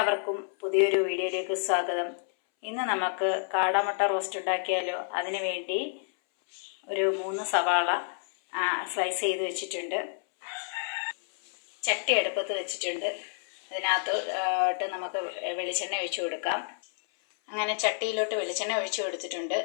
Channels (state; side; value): silent; right; 58 dB below the other